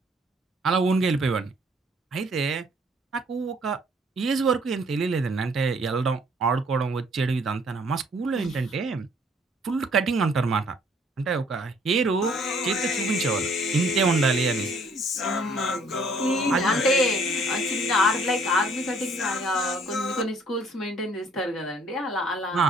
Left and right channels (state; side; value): normal; both; correlation 0.61